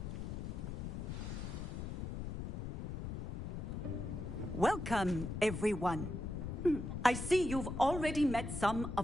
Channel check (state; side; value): noise; left; rumble, 5 dB below the sound